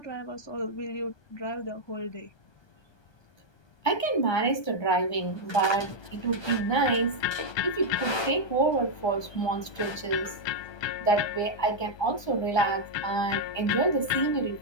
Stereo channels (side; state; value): right; late; 1.2 ms